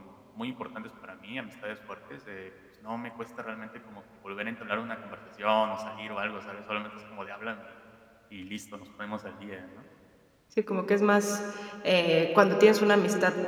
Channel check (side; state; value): both; identical; correlation 1.00